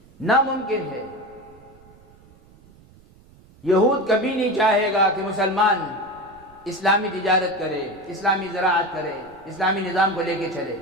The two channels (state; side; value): noise; right; rumble, 26 dB below the sound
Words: ناممکن ہے۔ یہود کبھی نہیں چاہے گا کہ مسلمان اسلامی تجارت کرے، اسلامی زراعت کرے، اسلامی نظام کو لے کے چلے،